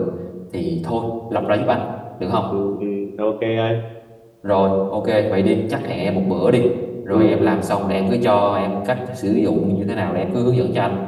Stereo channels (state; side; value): identical; both; correlation 1.00